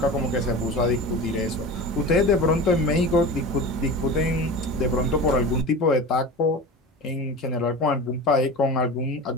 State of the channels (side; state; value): both; normal; correlation 0.31